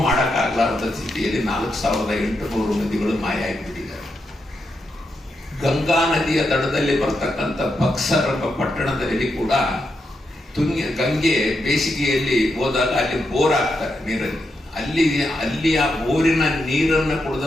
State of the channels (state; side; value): normal; both; correlation 0.84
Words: ಮಾಡಕ್ಕಾಗಲಾರದ ಸ್ಥಿತಿಯಲ್ಲಿ 4,800 ನದಿಗಳು ಮಾಯ ಆಗಿಬಿಟ್ಟಿದ್ದಾರೆ. ಗಂಗಾ ನದಿಯ ದಡದಲ್ಲಿ ಬರ್ತಕ್ಕಂಥ ಬಕ್ಸರ್ ಎಂಬ ಪಟ್ಟಣದಲ್ಲಿ ಕೂಡ ಗಂಗೆ ಬೇಸಿಗೆಯಲ್ಲಿ ಹೋದಾಗ ಅಲ್ಲಿ ಬೋರ್ ಆಗ್ತಾರೆ ನೀರಲ್ಲಿ. ಅಲ್ಲಿ ಆ ಬೋರಿನ ನೀರನ್ನು